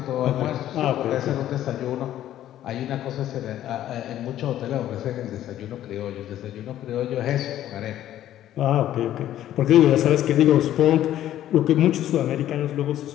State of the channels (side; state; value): right; quieter; 12.4 dB